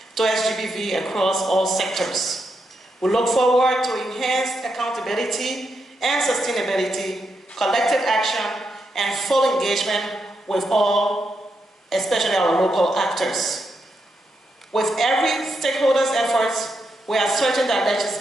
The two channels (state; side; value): normal; both; correlation 0.83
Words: to SGBV across all sectors. We look forward to enhanced accountability and sustainability, collective action, and full engagement with all, especially our local actors. With every stakeholder's efforts, we are certain that